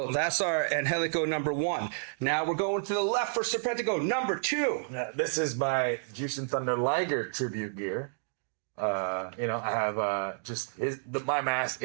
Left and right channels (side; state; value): left; silent; digital silence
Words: that's our Angelico number 1. Now we're going to the left for Serpentico number 2. Yeah, this is my Juice and Thunder Liger tribute gear. I have just my mask